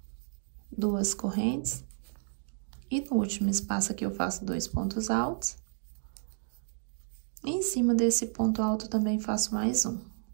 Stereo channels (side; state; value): left; silent; digital silence